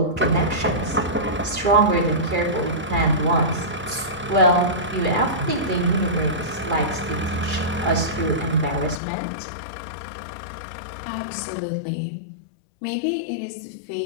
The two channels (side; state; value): right; drops out; at 9.0 s